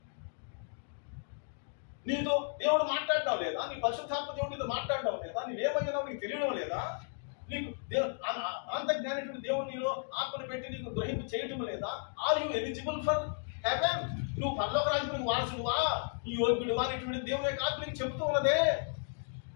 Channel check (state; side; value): silent; right; digital silence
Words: నీతో దేవుడు మాట్లాడడం లేదా? నీ పరిశుద్ధాత్మ దేవుడు నీతో మాట్లాడడం లేదా? నీవేమయ్యావు నీకు తెలియడం లేదా? నీకు అనంత జ్ఞానటువంటి దేవుడు నీలో ఆత్మను పెట్టి నీకు గ్రహింపు చేయటం లేదా? Are you eligible for heaven? నువ్వు పరలోక రాజ్యానికి వారసుడువా, నీ యోగ్యుడువా అనేటువంటి దేవుని యొక్క ఆత్మ నీకు చెబుతూ ఉన్నదే.